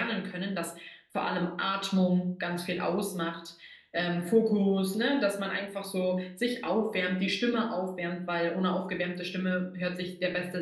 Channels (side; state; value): both; identical; correlation 1.00